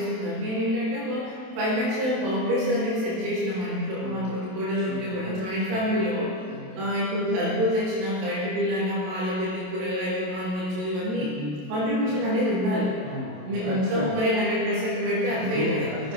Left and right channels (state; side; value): late; left; 27 ms